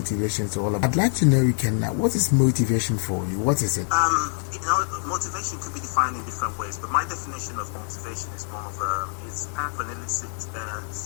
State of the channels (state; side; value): silent; right; 56 dB below the other